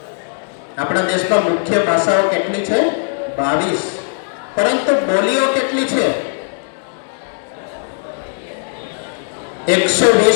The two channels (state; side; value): silent; right; digital silence